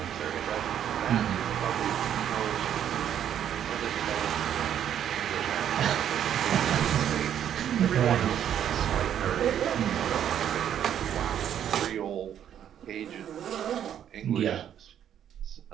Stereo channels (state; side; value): quieter; left; 9.8 dB